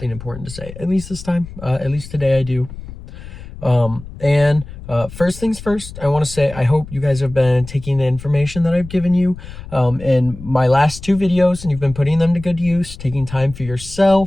important to say, at least this time, at least today I do. First things first, I want to say I hope you guys have been taking the information that I've given you in my last two videos, and you've been putting them to good use, taking time for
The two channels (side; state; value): left; noise; rumble, 14 dB below the sound